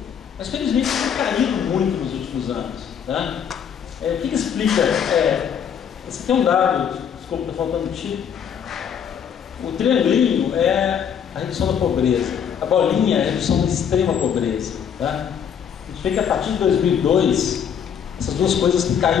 mas felizmente isso tem caído muito nos últimos anos. Tá? O que explica? Você tem um dado desculpa, está faltando o tipo. O triangulinho é a redução da pobreza, a bolinha é a redução da extrema pobreza. Tá? A gente vê que a partir de 2002, essas duas coisas têm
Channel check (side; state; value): right; quieter; 8.0 dB